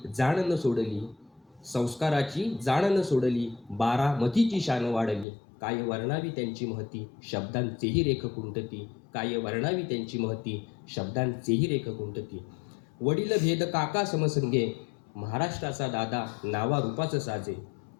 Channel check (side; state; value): right; drops out; at 5.2 s